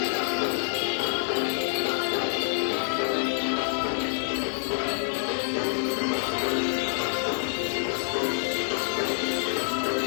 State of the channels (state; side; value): silent; right; 60 dB below the other